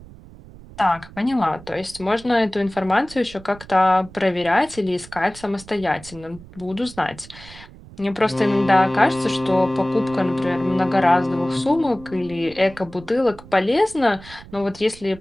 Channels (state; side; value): noise; right; rumble, 19 dB below the sound